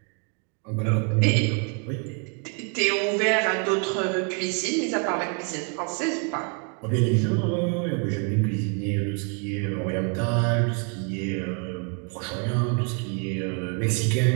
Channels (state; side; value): quieter; left; 38.3 dB